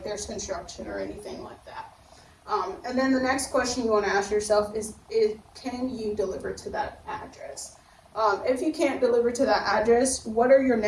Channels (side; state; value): both; identical; correlation 1.00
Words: there's construction or anything like that. And then the next question you want to ask yourself is can you deliver to that address? If you can't deliver to that address, what are your